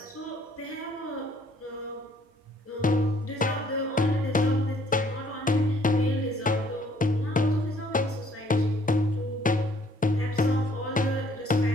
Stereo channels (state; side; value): normal; both; correlation 0.62